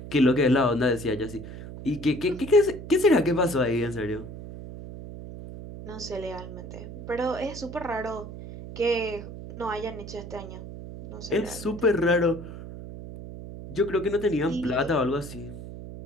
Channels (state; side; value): noise; right; hum, 11 dB below the sound